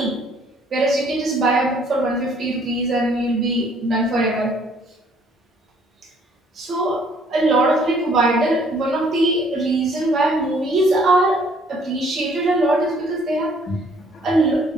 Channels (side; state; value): both; normal; correlation 0.61